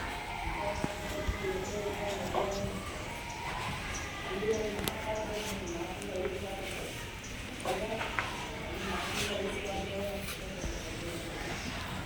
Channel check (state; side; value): identical; both; correlation 1.00